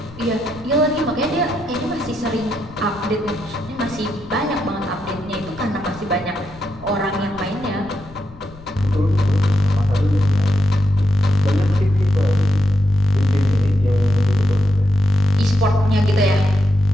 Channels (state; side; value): noise; left; rumble, 20 dB below the sound